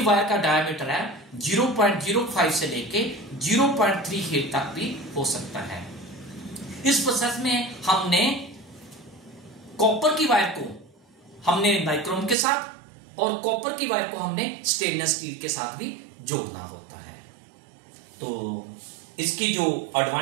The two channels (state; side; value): drops out; left; at 12.4 s